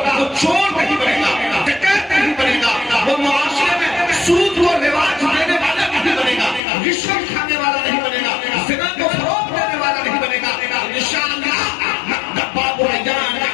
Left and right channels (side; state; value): right; drops out; at 6.6 s